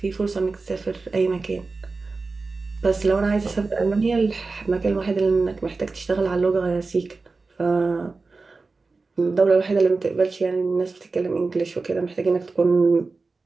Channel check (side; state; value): left; quieter; 3.9 dB